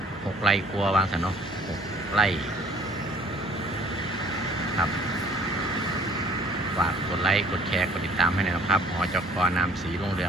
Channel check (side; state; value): both; normal; correlation 0.55